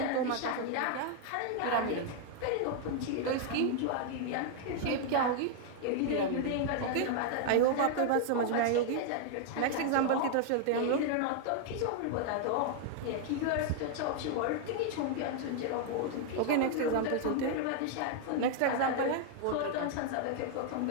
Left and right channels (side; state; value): both; different; correlation 0.00